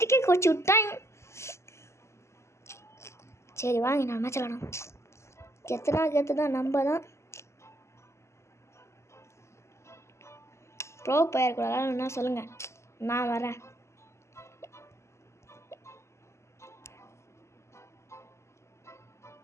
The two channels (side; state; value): right; late; 0.13 ms